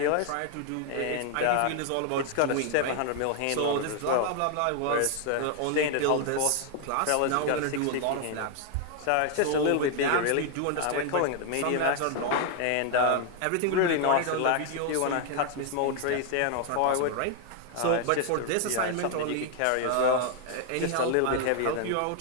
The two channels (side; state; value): both; different; correlation 0.00